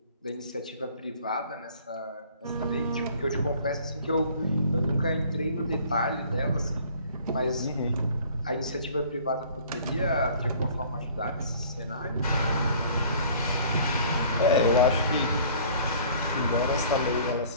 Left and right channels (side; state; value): both; inverted; correlation -0.51